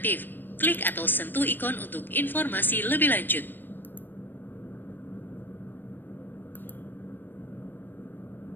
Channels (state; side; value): late; right; 0.093 ms